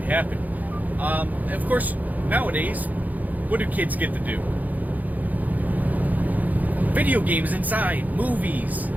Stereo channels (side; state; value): left; late; 0.080 ms